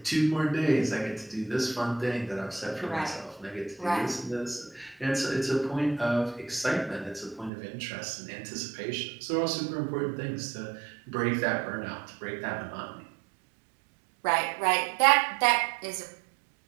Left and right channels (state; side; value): drops out; left; at 7.5 s